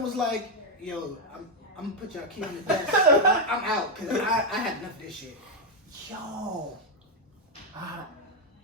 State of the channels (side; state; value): both; normal; correlation 0.02